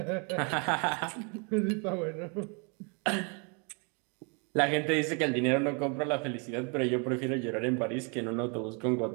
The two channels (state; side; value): quieter; left; 35.2 dB